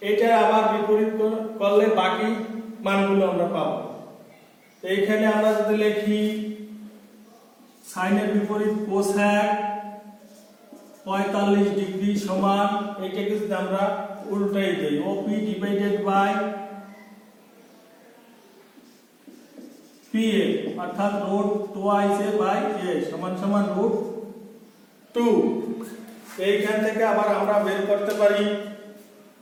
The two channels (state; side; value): identical; both; correlation 1.00